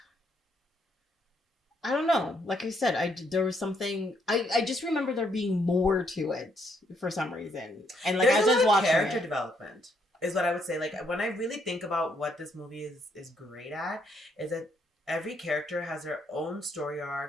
I don't know. Like I said, there was something. I just remember there being more to it for some reason, and like there's as I was watching character development is what I would say. Like when I really think about what this movie is great at, is that every character has their own story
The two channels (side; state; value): both; normal; correlation 0.72